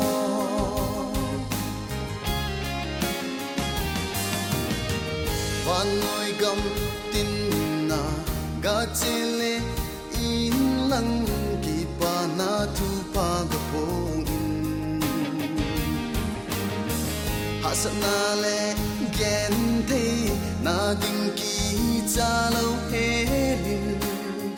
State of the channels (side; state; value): both; identical; correlation 1.00